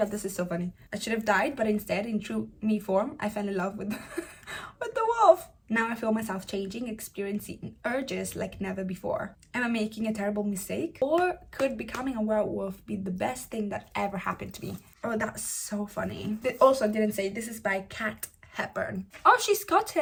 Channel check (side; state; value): both; identical; correlation 1.00